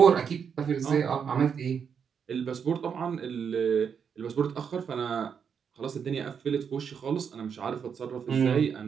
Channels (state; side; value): quieter; left; 7.0 dB